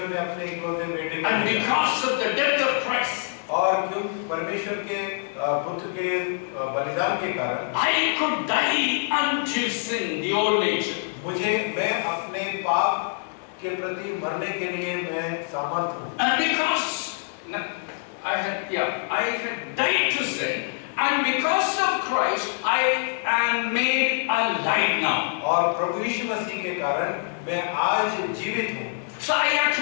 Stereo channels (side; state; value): right; silent; digital silence